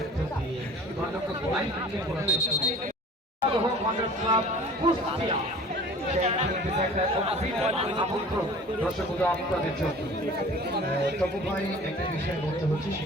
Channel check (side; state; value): both; normal; correlation 0.45